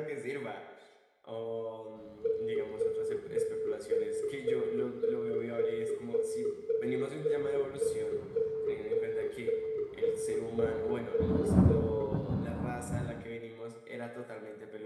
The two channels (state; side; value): identical; both; correlation 1.00